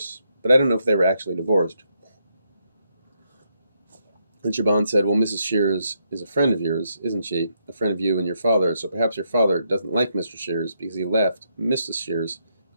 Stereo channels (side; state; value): both; inverted; correlation -0.78